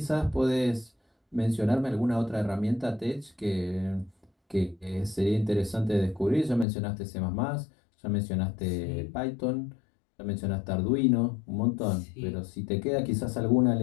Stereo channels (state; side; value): drops out; right; at 6.7 s